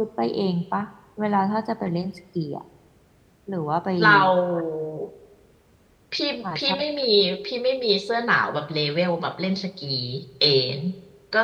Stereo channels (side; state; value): both; identical; correlation 1.00